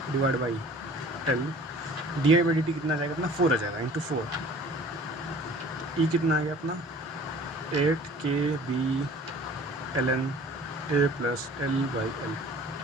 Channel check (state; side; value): normal; both; correlation 0.47